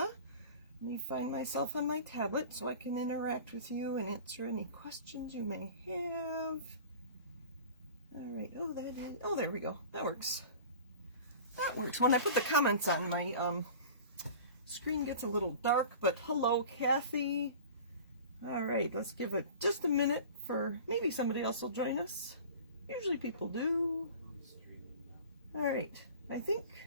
Let me find myself on my tablet so I can interact with you and answer any questions you may have. Alright, oh there we go. That works. That works. When I put the comments on, my screen gets a little dark, but hello Kathy. Alright, let's give it just a minute for maybe somebody else will join us. Usually people do. Alright, I think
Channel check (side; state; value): both; inverted; correlation -0.39